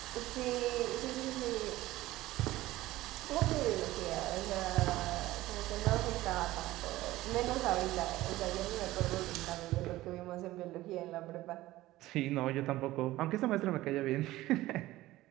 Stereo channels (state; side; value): quieter; left; 16.8 dB